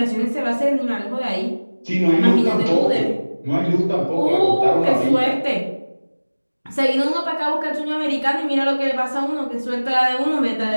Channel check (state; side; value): inverted; both; correlation -1.00